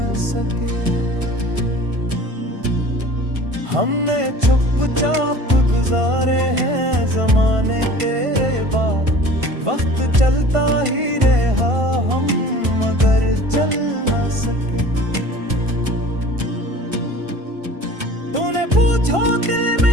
सके। हमने चुपचाप गुजारे हैं ज़माने तेरे बाद, वक्त चलता ही रहा हम मगर चल न सके। तूने पूछा दिल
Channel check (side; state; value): left; late; 1.5 ms